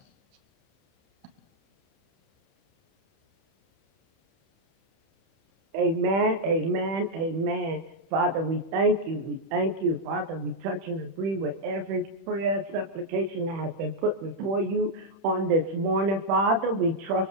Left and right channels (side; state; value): left; late; 31 ms